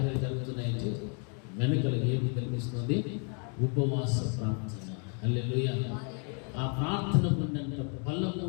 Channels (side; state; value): right; quieter; 39.7 dB